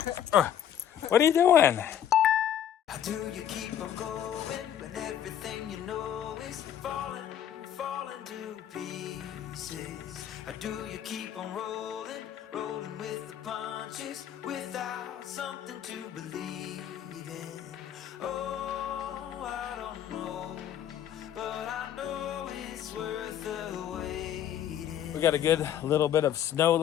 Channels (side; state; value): right; quieter; 10.1 dB